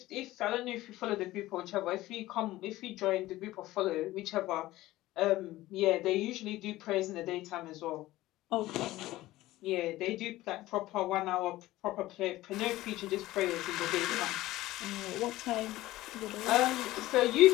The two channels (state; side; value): quieter; right; 16.9 dB